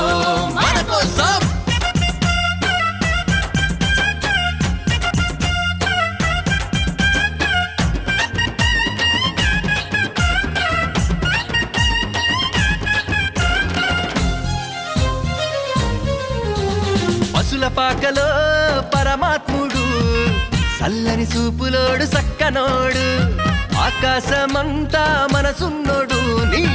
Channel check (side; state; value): both; identical; correlation 1.00